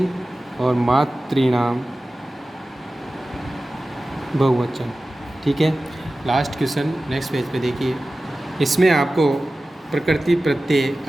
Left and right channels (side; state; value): both; normal; correlation 0.96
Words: और मातृणाम बहुवचन, ठीक है। लास्ट क्वेश्चन नेक्स्ट पेज पे देखिए, इसमें आपको प्रकृति प्रत्यय